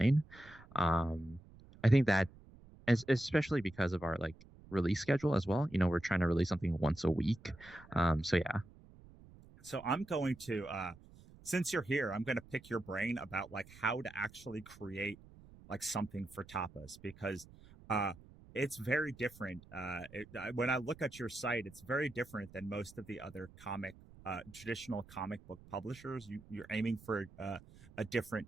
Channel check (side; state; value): right; noise; rumble, 21 dB below the sound